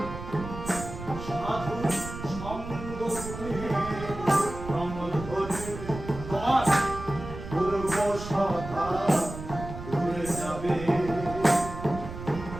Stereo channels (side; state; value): right; noise; rumble, 10 dB below the sound